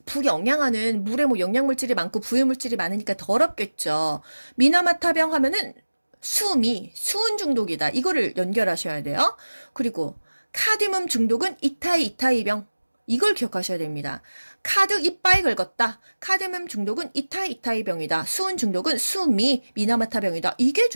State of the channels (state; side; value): inverted; both; correlation -1.00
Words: 부영양화는 물에 영양물질이 많고 부유물질이 많으니까 더럽겠죠. 미나마타병 하면은 수은 중독이다. 이거를 연결하셔야 돼요. 그리고 카드뮴 중독은 이타이병. 이걸 기억하셔야 됩니다. 카드 이빠이 긁었다. 카드뮴 중독은 이타이병이다. 수은 중독은 미나마타병이다. 이게